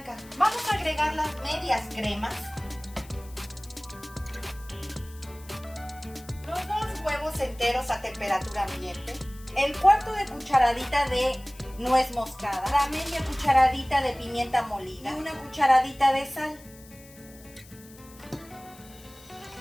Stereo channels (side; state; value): left; noise; hiss, 22 dB below the sound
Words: Vamos a agregar las medias cremas, los 2 huevos enteros a temperatura ambiente, el 1/4 de cucharadita de nuez moscada, la media cucharadita de pimienta molida y una cucharadita de sal.